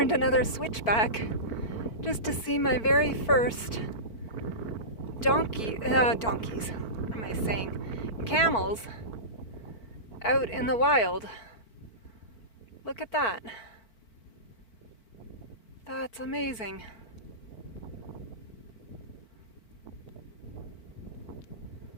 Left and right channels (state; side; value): late; right; 4.5 ms